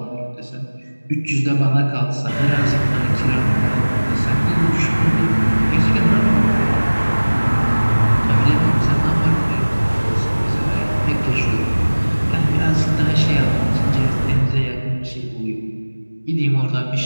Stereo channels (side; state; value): both; inverted; correlation -1.00